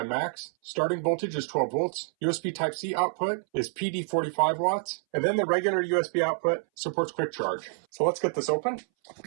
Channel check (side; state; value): left; silent; 59 dB below the other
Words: max. Starting voltage is 12 volts. USB Type-C output is PD 45 watts. And then the regular USB output supports quick charge. So let's get this open.